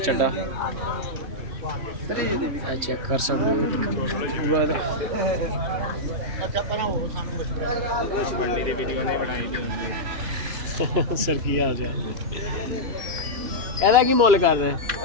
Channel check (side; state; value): left; late; 3.0 ms